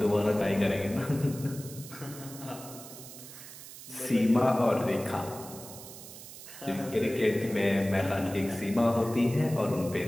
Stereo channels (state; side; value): noise; right; hiss, 15 dB below the sound